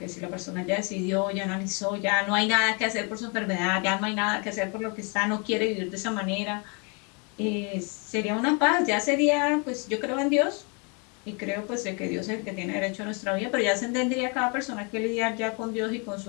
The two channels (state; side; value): quieter; right; 34.0 dB